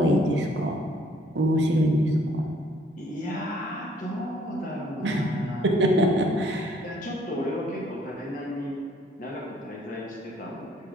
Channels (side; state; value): both; normal; correlation 0.63